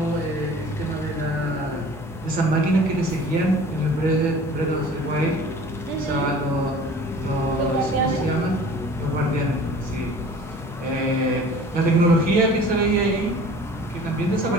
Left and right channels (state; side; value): normal; both; correlation 0.45